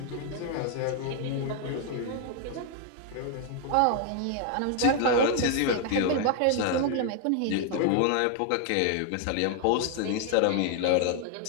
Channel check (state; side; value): different; both; correlation 0.00